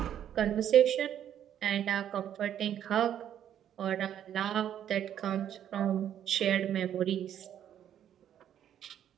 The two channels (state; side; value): quieter; left; 10.2 dB